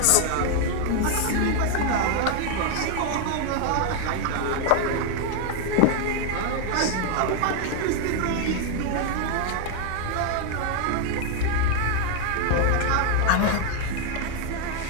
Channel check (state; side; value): different; both; correlation 0.00